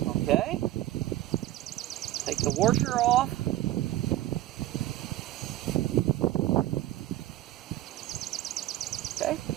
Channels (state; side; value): quieter; left; 14.7 dB